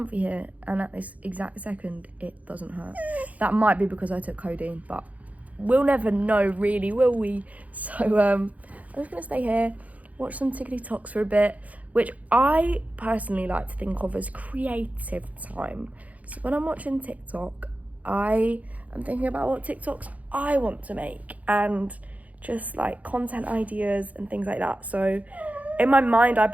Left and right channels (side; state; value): left; late; 0.072 ms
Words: here, and at this exact second, it doesn't hurt. That might be because I took codeine, but we'll never know really, will we? So I'm just gonna stay here, watch some TikToks for a bit, which I personally like to think of as creative time. So when I'm watching TikTok, I am thinking about what TikToks I want to make and just like content ideas and things like that. So in my mind, I